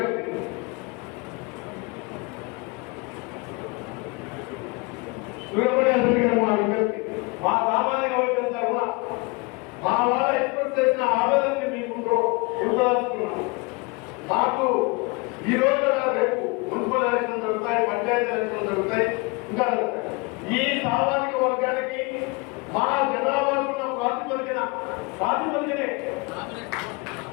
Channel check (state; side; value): quieter; right; 28.1 dB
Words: సూర్యప్రకాష్ రెడ్డి గారు మా విజ్ఞప్తి, మా సామాజిక వర్గం తరఫున మా వాళ్ళ ఎక్స్ప్రెస్ చేసిన ఆవేదనని మీ ముందు ఉంచదలుచుకున్నాం. మాకు ఈ రోజు రేపు మున్సిపల్ ఎలక్షన్ జరుగుతాయి, పంచాయతీ ఎలక్షన్ జరుగుతాయి, ఇంకా ఈ సామాజిక వర్గానికి మా జనాభాకున్న ప్రాతిపదికనే